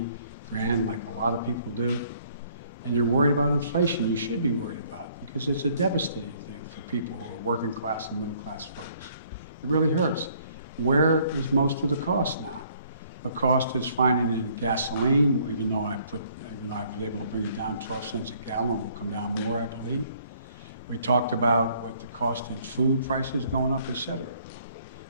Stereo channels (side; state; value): both; inverted; correlation -0.63